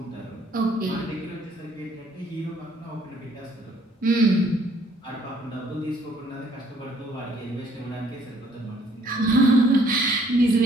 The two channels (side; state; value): both; normal; correlation 0.62